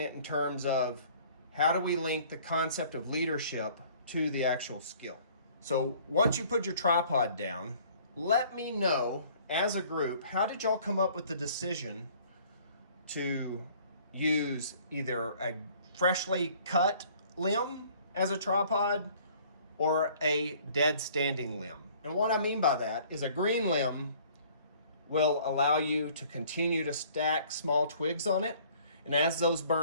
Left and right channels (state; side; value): inverted; both; correlation -0.55